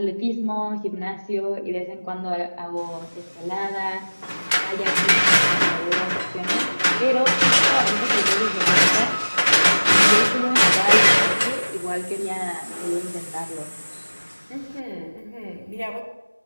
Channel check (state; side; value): inverted; both; correlation -1.00